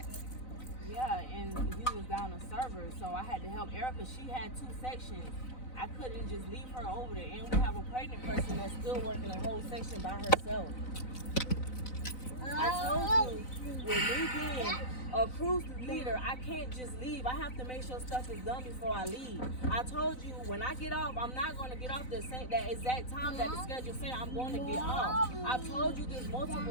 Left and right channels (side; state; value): right; late; 4.0 ms